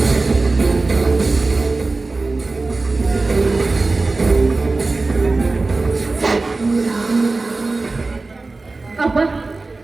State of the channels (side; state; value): left; quieter; 3.5 dB